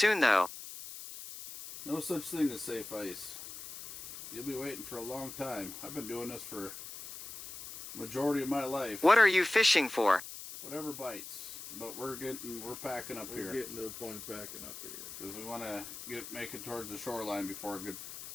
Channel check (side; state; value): left; noise; hiss, 11 dB below the sound